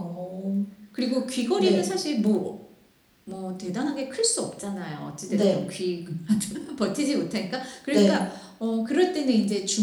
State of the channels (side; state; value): both; identical; correlation 1.00